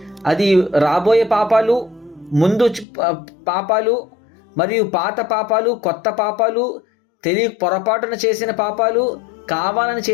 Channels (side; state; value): right; drops out; at 2.9 s